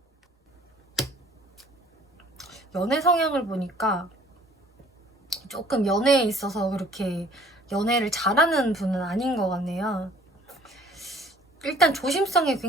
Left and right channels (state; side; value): normal; both; correlation 0.54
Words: 연애 성향을 보니까 조금 연애에 있어서 그렇게 연애를 잘하는 분은 아닌 것 같네요. 일단 조심성이